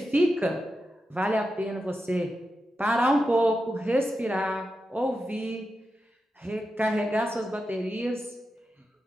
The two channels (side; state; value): both; normal; correlation 0.89